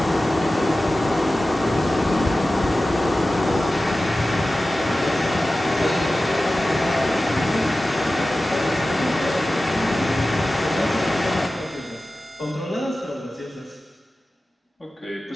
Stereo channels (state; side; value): normal; both; correlation 0.95